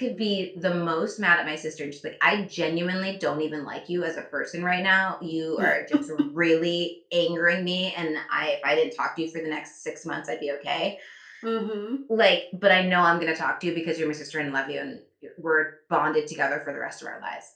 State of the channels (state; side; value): identical; both; correlation 1.00